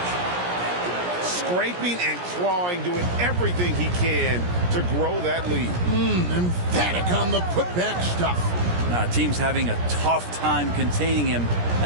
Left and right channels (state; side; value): late; left; 17 ms